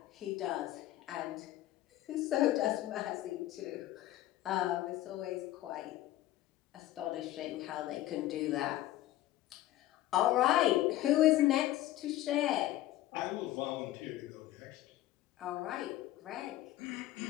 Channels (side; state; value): right; quieter; 14.8 dB